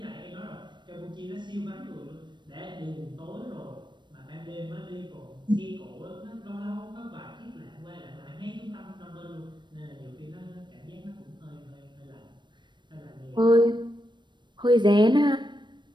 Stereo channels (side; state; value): left; late; 0.22 ms